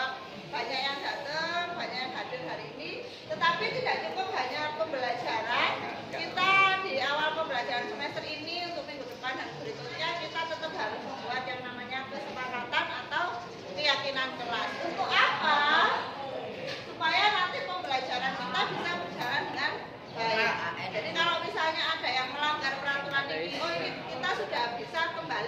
banyak yang datang, banyak yang hadir hari ini. Tetapi tidak cukup hanya pembelajaran. Kita di awal pembelajaran semester ini untuk minggu depan dan berikutnya kita tetap harus membuat yang namanya kesepakatan atau keyakinan kelas. Untuk apa? Supaya nanti pembelajaran kita bisa berjalan dengan baik. Jadi kalau misalnya ada yang melanggar peraturan ini, oh ini kita sudah bisa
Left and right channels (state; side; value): identical; both; correlation 1.00